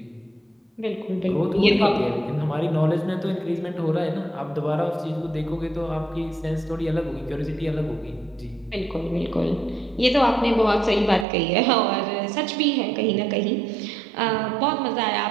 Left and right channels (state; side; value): drops out; left; at 11.2 s